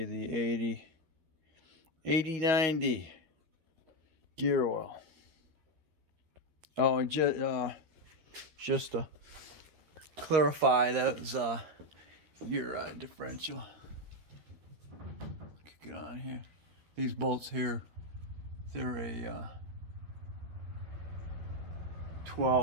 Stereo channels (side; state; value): left; late; 13 ms